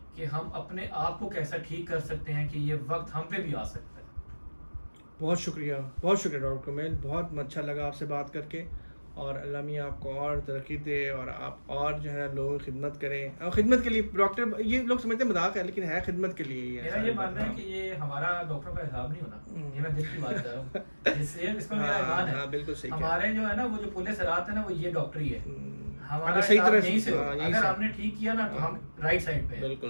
कि हम अपने आप को कैसा ठीक कर सकते हैं कि ये वक्त हम पे भी आ सकता है। बहुत शुक्रिया डॉक्टर कमेल, बहुत अच्छा लगा आपसे बात करके, और अल्लाह मियाँ आपको और तरक्की दे और आप और जो है लोगों की खिदमत करें। और खिदमत के लिए डॉक्टर, ये लोग समझते हैं मजाक है, लेकिन है खिदमत के लिए ही है। मेरा ये मानना है कि ये हमारा डॉक्टर का हिसाब नहीं होना, ये मैं दिल की बात कर रहा हूँ, जिससे इसमें मेरा ईमान है। हाँ, बिल्कुल सही कह रहे हमारे जो है ना वो जो पुलिस रात है ना, वो ये डॉक्टर ही है। हमारा अगर सही हिसाब तरह यहीं से हाँ, होगा। यहीं अगर से। हमने ठीक किया ना तो हम राइट साइड पे हैं।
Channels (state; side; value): inverted; both; correlation -1.00